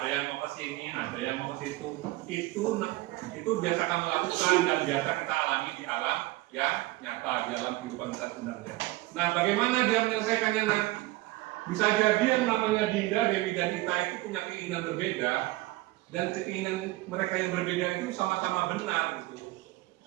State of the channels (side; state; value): left; quieter; 19.4 dB